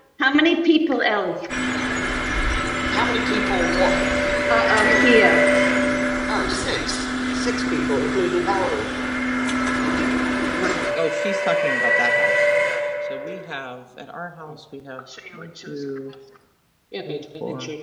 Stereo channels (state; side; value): identical; both; correlation 1.00